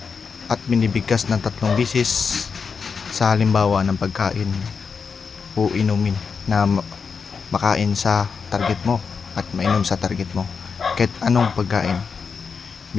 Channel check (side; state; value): right; quieter; 5.6 dB